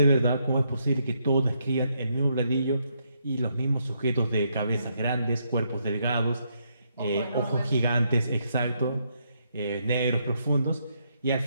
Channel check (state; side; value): inverted; both; correlation -0.76